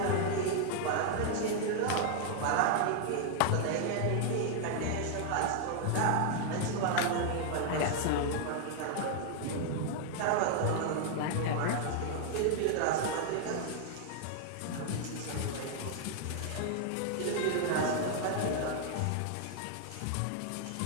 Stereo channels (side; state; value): both; different; correlation 0.00